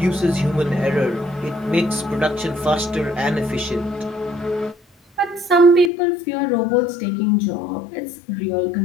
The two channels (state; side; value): drops out; right; at 5.9 s